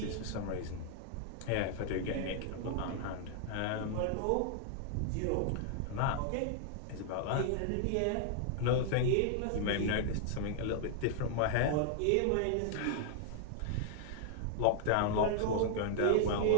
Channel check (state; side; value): different; both; correlation 0.00